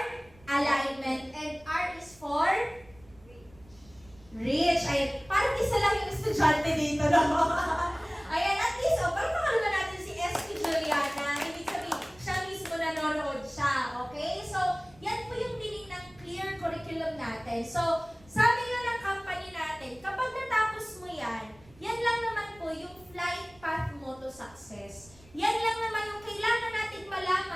alignment and R is for reach. Ayan. Parang isa lang yung estudyante dito, no? Ayan, at least, parang nakalala natin si S.P. Juliana. Ibig sabihin, siya mismo nanonood siya. Okay? So, yan po yung meaning ng clear curriculum natin. So, sabi nga ng company natin, kapag natapos mo yan, yan lang naman po yung flight path mo to success. Yan lang naman yung kailangan natin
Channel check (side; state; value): right; noise; rumble, 26 dB below the sound